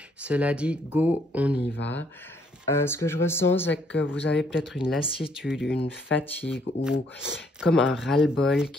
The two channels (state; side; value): normal; both; correlation 0.68